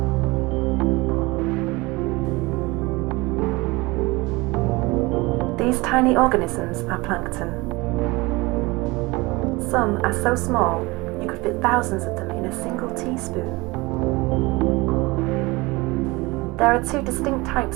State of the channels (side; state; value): left; quieter; 23.3 dB